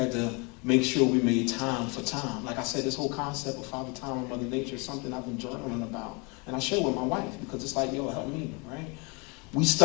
to make sure we made time for time. Like I said, this whole concept of Father Time and Mother Nature is something I've been journaling about. And I share with my wife because it's like, help me, right? We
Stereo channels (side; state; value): right; quieter; 30.4 dB